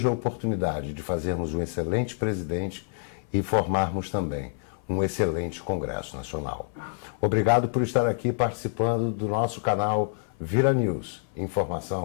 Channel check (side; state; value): right; silent; 57 dB below the other